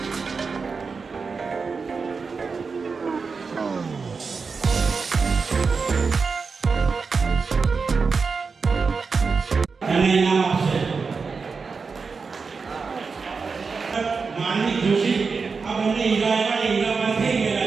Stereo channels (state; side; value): quieter; left; 4.9 dB